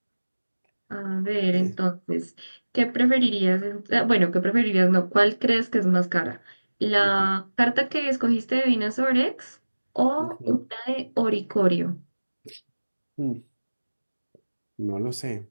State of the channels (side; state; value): both; inverted; correlation -1.00